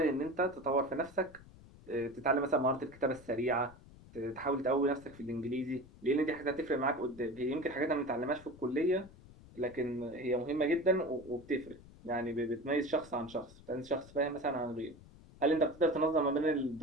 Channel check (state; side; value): noise; left; rumble, 21 dB below the sound